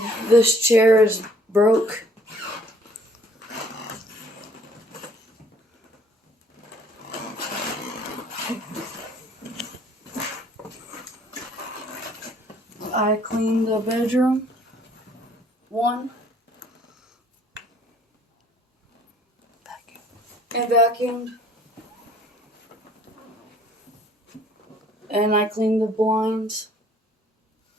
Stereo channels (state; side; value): normal; both; correlation 0.59